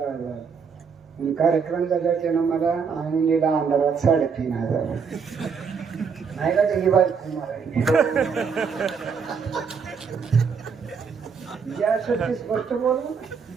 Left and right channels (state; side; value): quieter; left; 5.9 dB